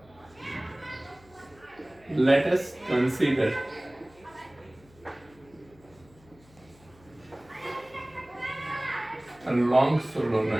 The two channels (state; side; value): noise; left; hum, 27 dB below the sound